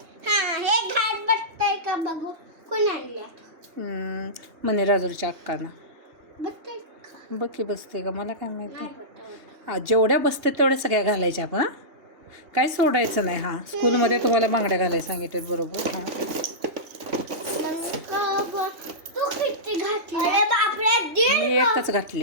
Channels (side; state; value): left; late; 3.2 ms